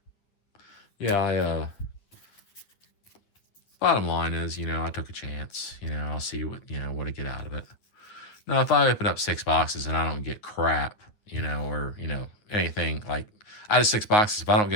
Yeah, bottom line is, I took a chance. I'll see what I get out of it. Now, if I open up 6 boxes and I don't get crap, or, anything like out of 6 boxes, if I don't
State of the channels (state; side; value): late; right; 9.5 ms